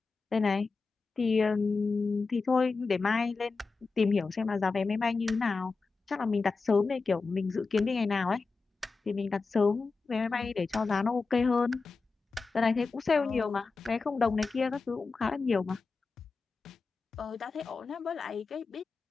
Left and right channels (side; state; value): right; quieter; 4.3 dB